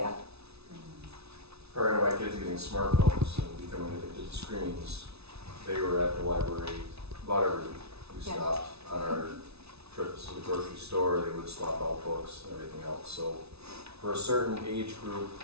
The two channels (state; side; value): late; left; 0.80 ms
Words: Prior to my kids getting smartphones and becoming addicted to screens, they were at the library about every week. We stopped on our trips to the grocery store, they would swap out books and everything else. So for a certain age group,